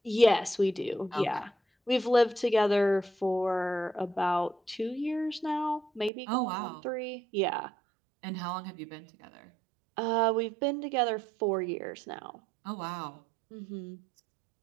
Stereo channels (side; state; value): left; drops out; at 6.1 s